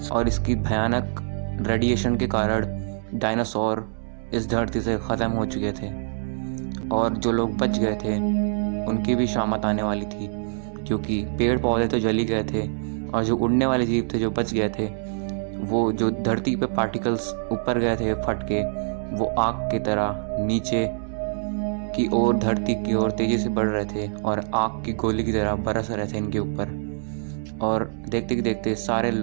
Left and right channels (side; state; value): left; silent; 61 dB below the other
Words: और इसकी भयानक रेडिएशन के कारण डायनासोर इस धरती से ख़त्म हो चुके थे। और जो लोग बच गए थे उनकी भी शामत आने वाली थी, क्योंकि पेड़ पौधे तो जल ही गए थे और जो उड़ने वाले जीव थे जो बच गए थे, वो जो धरती पे पार्टिकल्स ऊपर गए थे फट के, वो आग की तरह नीचे की ओर धरती की ओर तेज़ी से बढ़ रहे थे और आग की गोली की तरह बरस रहे थे इनके ऊपर। और देखते देखते सारे